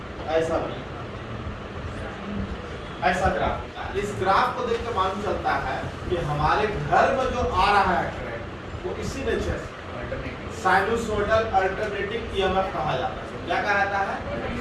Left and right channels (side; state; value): both; identical; correlation 1.00